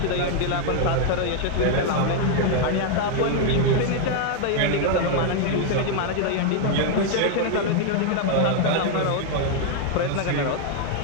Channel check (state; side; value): different; both; correlation 0.00